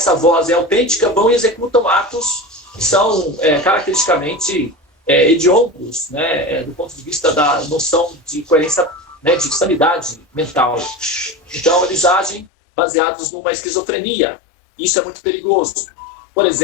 voz é autêntica, vão e executam atos que são caracteristicamente hediondos, né, do ponto de vista da noção de coerência, né, de sanidade mental. Então, eles agem baseados numa esquizofrenia. Isso é muito perigoso. Por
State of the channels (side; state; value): right; drops out; at 12.5 s